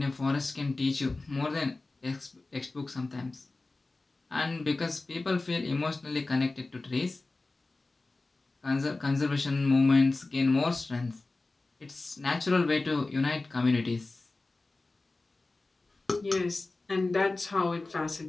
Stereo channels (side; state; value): right; quieter; 3.3 dB